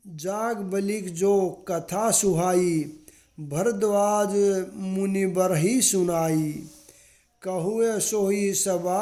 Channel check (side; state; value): both; identical; correlation 1.00